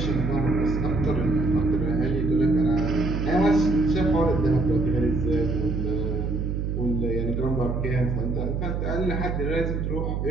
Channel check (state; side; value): noise; right; hum, 1 dB below the sound